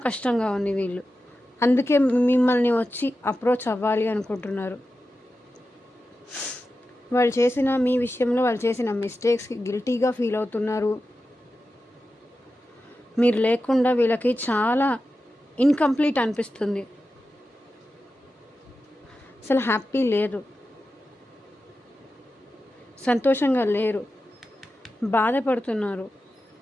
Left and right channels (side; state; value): both; normal; correlation 0.92